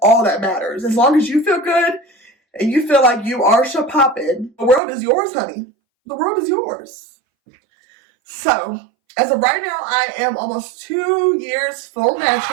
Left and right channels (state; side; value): drops out; left; at 4.8 s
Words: all that matters. As long as you feel good and you feel like you are poppin', the world is yours, honey. The world is yours. So, as of right now, I am almost 2 years full